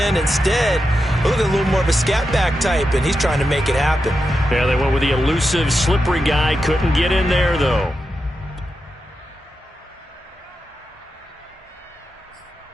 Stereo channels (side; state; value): both; normal; correlation 0.88